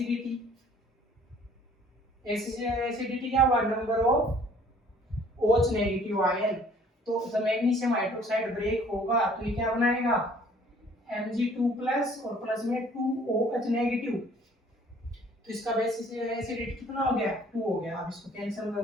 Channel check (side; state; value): both; normal; correlation 0.56